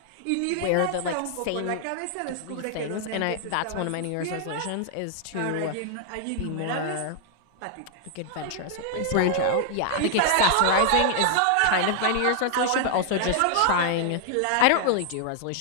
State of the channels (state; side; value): different; both; correlation 0.00